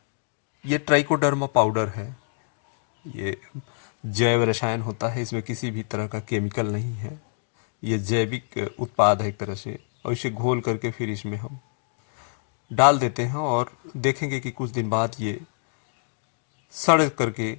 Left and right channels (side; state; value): right; silent; 61 dB below the other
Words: ये ट्राइकोडर्मा पाउडर है, ये जैव रसायन होता है, इसमें किसी भी तरह का केमिकल नहीं है, ये जैविक उत्पाद है एक तरह से। और इसे घोल करके फिर इसमें हम डाल देते हैं और देखेंगे कि कुछ दिन बाद ये सड़ करके